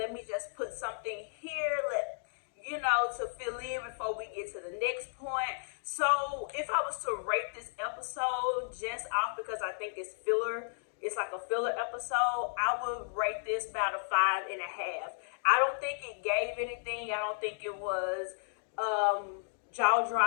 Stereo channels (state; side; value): silent; right; digital silence